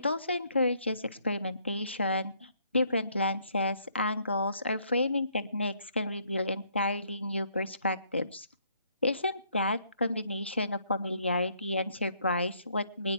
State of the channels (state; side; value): inverted; both; correlation -0.68